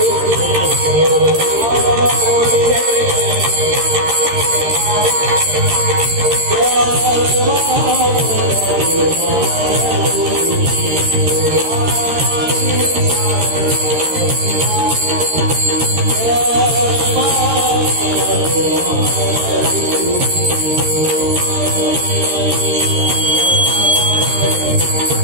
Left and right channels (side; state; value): left; late; 13 ms